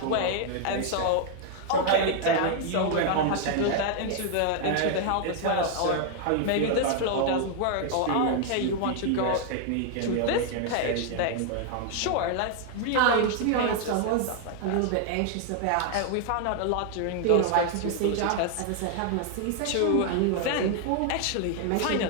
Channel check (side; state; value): both; different; correlation 0.00